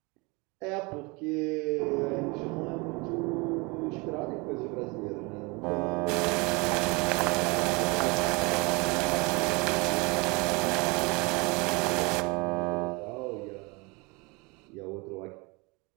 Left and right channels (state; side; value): quieter; left; 27.4 dB